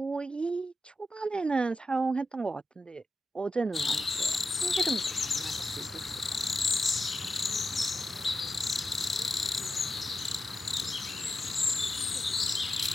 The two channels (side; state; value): both; normal; correlation 0.90